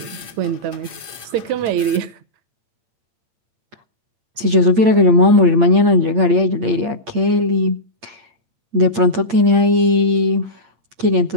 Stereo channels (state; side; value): late; left; 8.7 ms